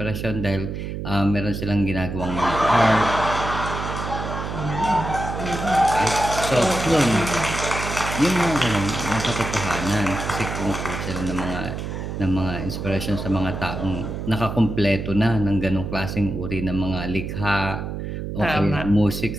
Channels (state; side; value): noise; right; hum, 5 dB below the sound